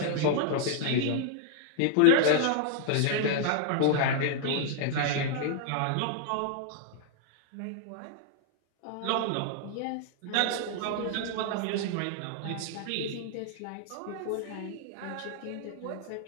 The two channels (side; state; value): both; different; correlation 0.00